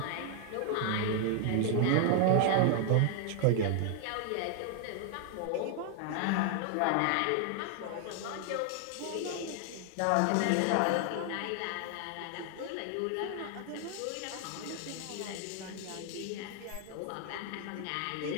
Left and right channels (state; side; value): different; both; correlation 0.00